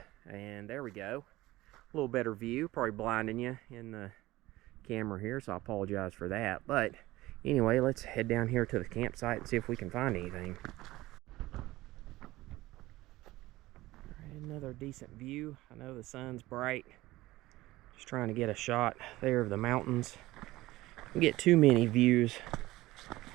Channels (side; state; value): left; quieter; 18.0 dB